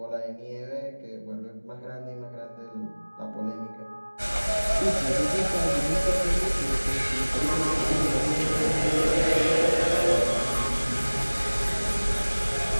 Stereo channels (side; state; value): both; inverted; correlation -1.00